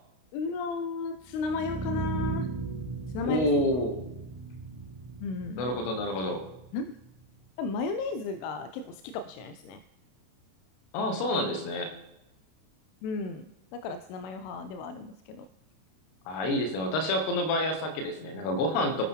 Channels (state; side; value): late; right; 32 ms